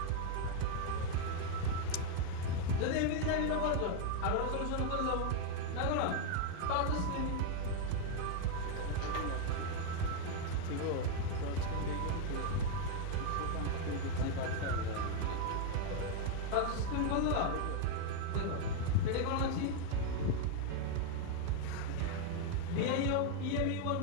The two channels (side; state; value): both; different; correlation 0.01